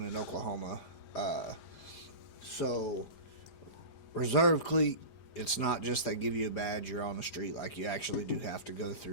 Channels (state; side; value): late; right; 5.0 ms